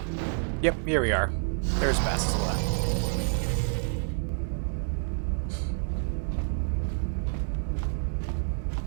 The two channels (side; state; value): left; silent; 59 dB below the other